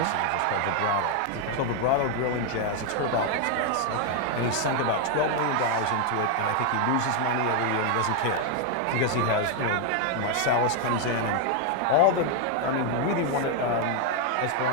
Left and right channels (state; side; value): different; both; correlation 0.00